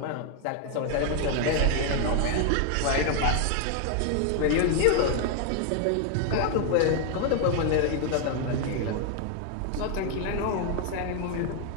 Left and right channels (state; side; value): different; both; correlation 0.00